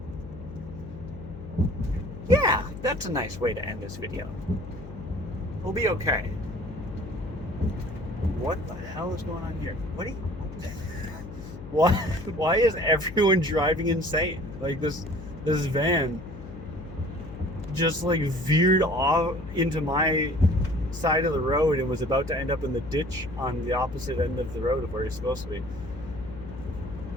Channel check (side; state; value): left; noise; hum, 13 dB below the sound